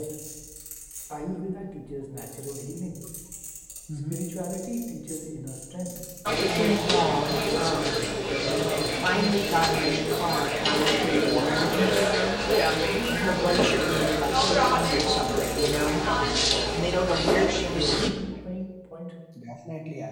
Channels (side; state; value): both; identical; correlation 1.00